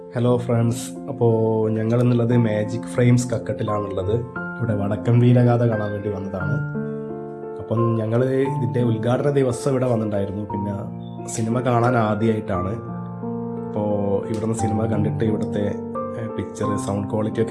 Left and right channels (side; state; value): both; identical; correlation 1.00